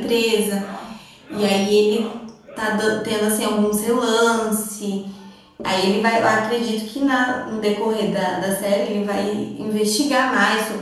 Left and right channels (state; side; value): identical; both; correlation 1.00